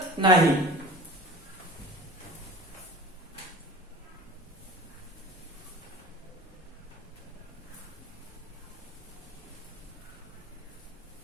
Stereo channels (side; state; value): both; normal; correlation 0.39